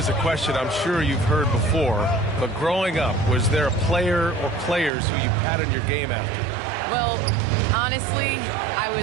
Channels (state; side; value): drops out; left; at 4.9 s